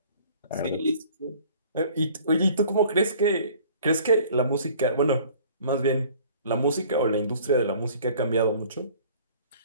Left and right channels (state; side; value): inverted; both; correlation -0.52